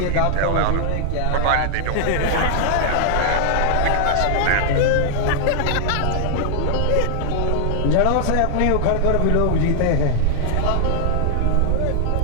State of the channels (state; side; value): different; both; correlation -0.01